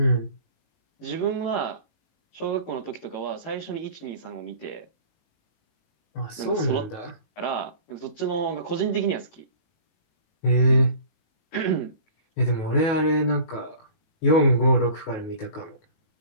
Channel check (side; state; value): right; late; 19 ms